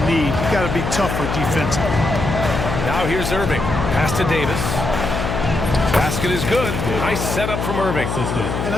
need. You got to be tougher defensively. Now here's Irving. Pass to Davis. Basket is good. Nice setup from Irving. And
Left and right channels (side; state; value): left; noise; hum, 3 dB below the sound